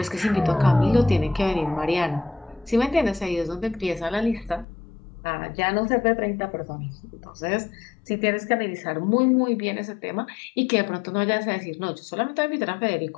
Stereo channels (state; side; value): drops out; right; at 4.7 s